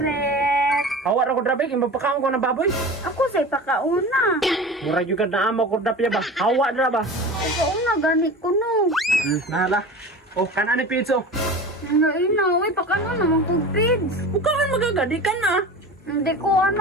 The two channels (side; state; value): both; normal; correlation 0.33